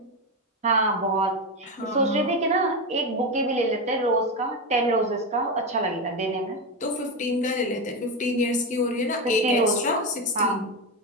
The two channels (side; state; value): both; normal; correlation 0.13